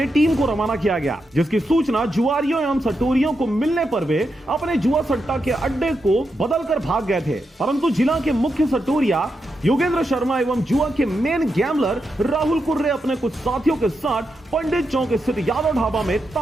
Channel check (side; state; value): both; normal; correlation 0.85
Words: टीम को रवाना किया गया, जिसकी सूचना जुआरियों एवं सटोरियों को मिलने पर वे अपने जुआ सट्टा के अड्डे को बदलकर भाग गए थे। परंतु जिला के मुख्य सटोरिया योगेंद्र शर्मा एवं जुआ के मेन गैमलर राहुल कुर्रे अपने कुछ साथियों के साथ पंडित चौक स्थित यादव ढाबा में